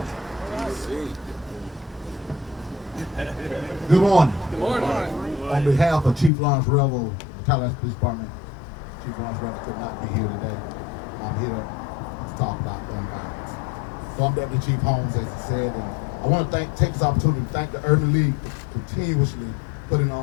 Good morning. Good morning. On behalf of Chief Lawrence Revel, Tallahassee Police Department, Chief Lawrence Revel could not be here today. I'm here to talk about gun violence. So I'm Deputy Chief Holmes, as he said, and I want to take this opportunity to thank the Urban League for continuously putting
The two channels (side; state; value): right; drops out; at 6.3 s